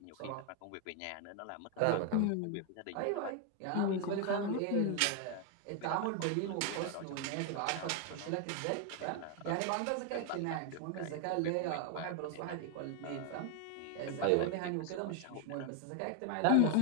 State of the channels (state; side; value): different; both; correlation 0.00